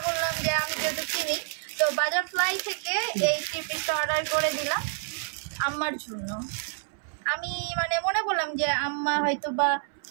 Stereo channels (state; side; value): silent; left; 59 dB below the other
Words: করলাম যে আমি যেহেতু চিনি, তো বাটারফ্লাই থেকে এই 3 পিসটা অর্ডার করে দিলাম আম্মার জন্য। আমি মানে মনে করলাম যে আম্মা হয়তো বা